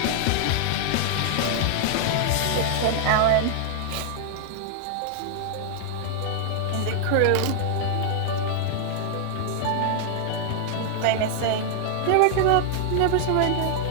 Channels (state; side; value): different; both; correlation -0.01